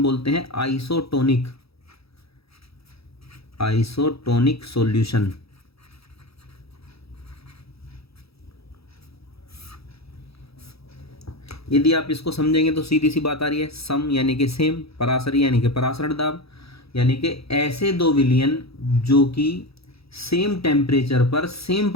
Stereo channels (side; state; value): right; late; 0.77 ms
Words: बोलते हैं आइसोटोनिक, आइसोटोनिक सॉल्यूशन। यदि आप इसको समझेंगे तो सीधी सी बात आ रही है, सम यानी कि सेम, परासरी यानी कि परासरण दाब, यानी कि ऐसे दो विलयन जो कि सेम टेम्परेचर पर सेम